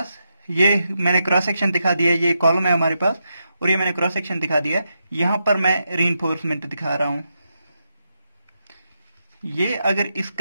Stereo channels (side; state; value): both; inverted; correlation -0.84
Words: ये मैंने क्रॉस सेक्शन दिखा दिया है, ये कॉलम है हमारे पास और ये मैंने क्रॉस सेक्शन दिखा दिया है। यहां पर मैं रीइंफोर्समेंट दिखा रहा हूं। ये अगर